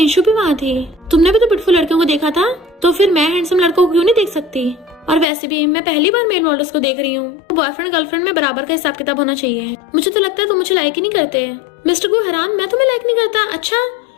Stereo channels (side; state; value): right; drops out; at 5.2 s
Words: भी वहाँ थी। तुमने भी तो ब्यूटीफुल लड़कियों को देखा था, तो फिर मैं हैंडसम लड़कों को क्यों नहीं देख सकती? और वैसे भी मैं पहली बार मेल मॉडल्स को देख रही हूँ। बॉयफ्रेंड गर्लफ्रेंड में बराबर का हिसाब किताब होना चाहिए। मुझे तो लगता है तुम मुझे लाइक ही नहीं करते। मिस्टर गु हैरान मैं तुम्हें लाइक नहीं करता? अच्छा